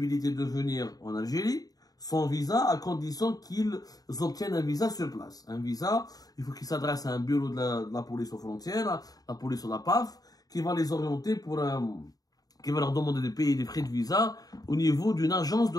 de venir en Algérie sans visa, à condition qu'ils obtiennent un visa sur place. Un visa, il faut qu'ils s'adressent à un bureau de la police aux frontières, la police ou la PAF, qui va les orienter qui va leur demander de payer des frais de visa au niveau d'une agence de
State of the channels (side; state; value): right; late; 0.18 ms